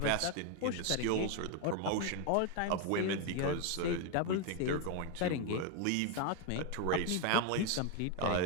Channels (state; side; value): different; both; correlation 0.01